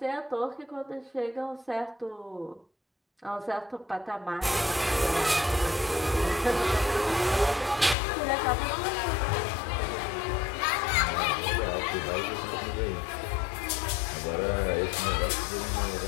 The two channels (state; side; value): drops out; right; at 8.0 s